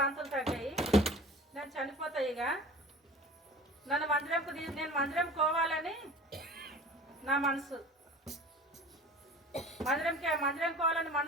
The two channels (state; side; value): normal; both; correlation 0.41